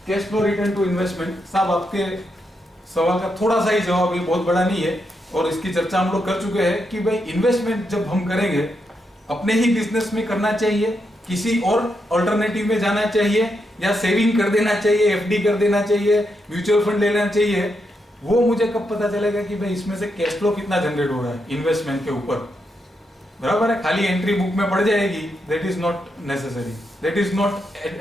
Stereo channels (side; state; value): both; normal; correlation 0.82